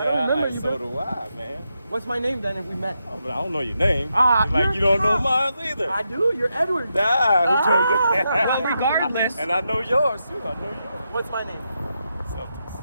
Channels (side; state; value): both; inverted; correlation -0.85